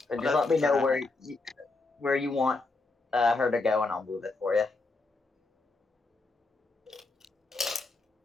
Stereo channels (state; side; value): quieter; right; 3.5 dB